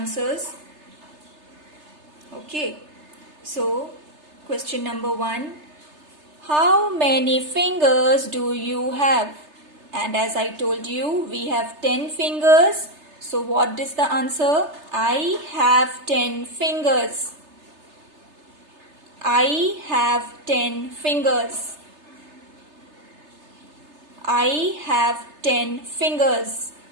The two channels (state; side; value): late; left; 3.3 ms